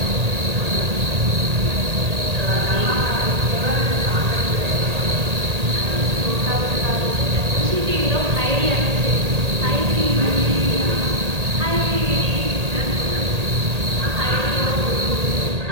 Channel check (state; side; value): late; left; 1.8 ms